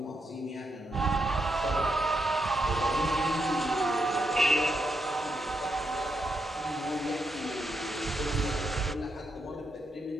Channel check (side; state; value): both; normal; correlation 0.82